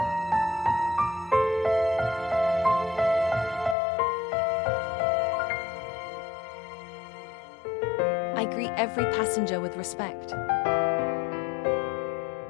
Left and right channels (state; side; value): drops out; right; at 3.8 s